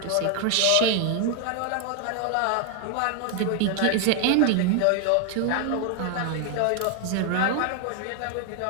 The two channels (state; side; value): different; both; correlation 0.00